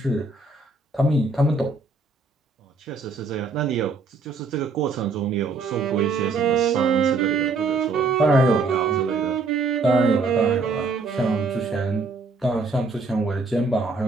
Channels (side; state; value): left; quieter; 4.0 dB